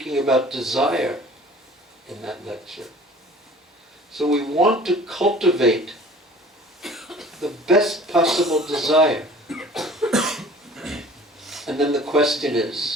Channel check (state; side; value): normal; both; correlation 0.47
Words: about desire in that lecture. So we want to cultivate the best possible desire. And then the question